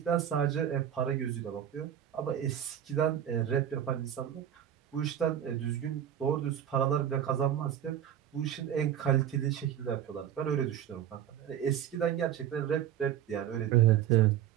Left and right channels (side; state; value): left; quieter; 10.2 dB